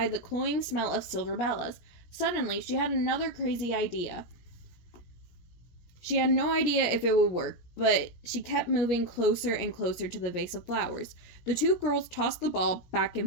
cloying smell of silver bellas. Suddenly, she had another crazy idea. She had no idea if it would work, but she kept moving closer and closer to the vase of flowers. The two girls tossed the ball back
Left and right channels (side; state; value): right; late; 17 ms